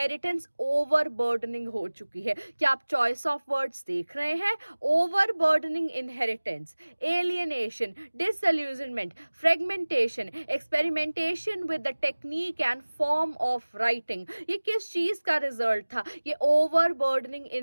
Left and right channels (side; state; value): both; inverted; correlation -1.00